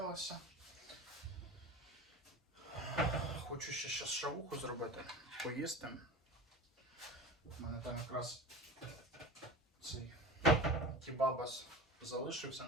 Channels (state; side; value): normal; both; correlation 0.32